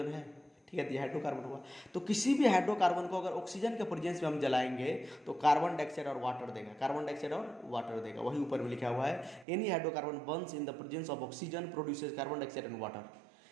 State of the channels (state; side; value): drops out; left; at 9.5 s